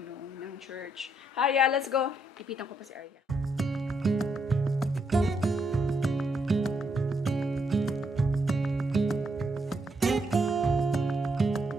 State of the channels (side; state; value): both; normal; correlation 0.77